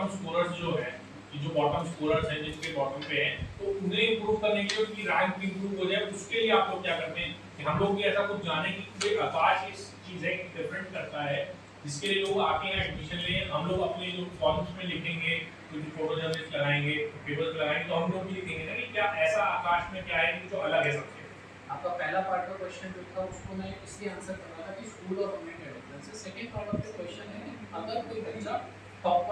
स्कोरर्स जो है, कि जो बॉटम स्कोरर्स हैं जिनके बॉटम पे हैं, तो उन्हें इंप्रूव करने के लिए उनकी रैंक इंप्रूव हो जाए, उसके लिए आप लोग क्या करते हैं कि हम लोग भी ऐसा कुछ जाने कि कोई आकाश इस चीज़ है डिफरेंट करता है जिसके लिए लोग आके यहाँ एडमिशन लें, हम लोग अपने जो कॉलम्स में लिखेंगे, कुछ फोटो जर्नलिस्ट लगाएंगे, पेपर्स लगाएंगे, तो हम लोग भी लिखेंगे ना कि क्या ऐसा आकाश में क्या है कि जो अलग है सबसे। आपका पहला पार्ट का क्वेश्चन जो था उसको मैं इसलिए आंसर कर रहा था कि स्कूल और गवर्नमेंट का डिफरेंस है। Second part of the question है अगर कोई बच्चा टॉप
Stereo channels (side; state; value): both; identical; correlation 1.00